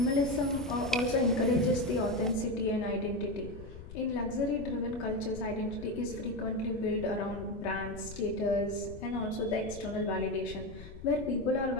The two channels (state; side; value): noise; left; rumble, 14 dB below the sound